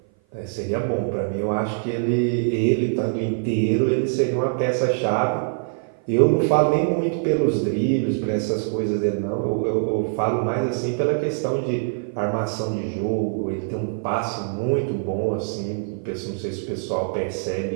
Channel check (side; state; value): left; silent; 56 dB below the other